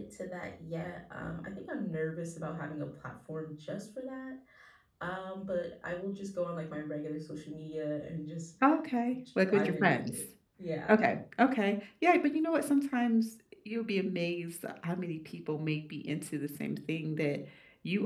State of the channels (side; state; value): both; identical; correlation 1.00